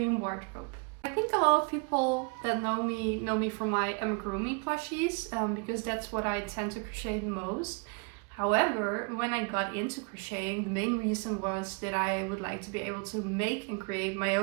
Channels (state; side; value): quieter; left; 34.5 dB